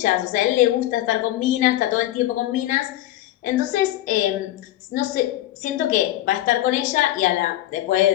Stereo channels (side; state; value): right; quieter; 14.6 dB